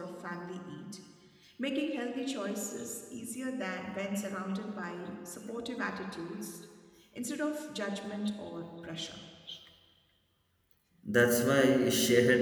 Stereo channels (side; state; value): both; identical; correlation 1.00